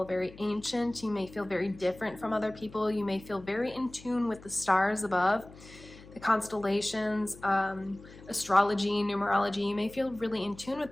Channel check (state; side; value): noise; left; hum, 20 dB below the sound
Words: very ancient, you may feel very different from other people, you may feel very in tune with the stars above, the constellations, astrology, numerology. You may feel really in tune